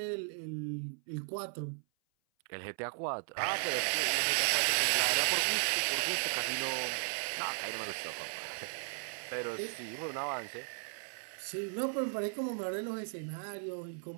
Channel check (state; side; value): silent; left; 54 dB below the other